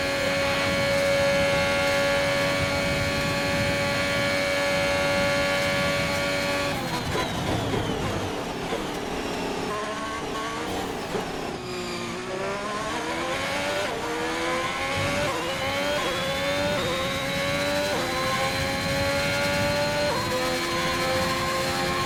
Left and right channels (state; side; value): identical; both; correlation 1.00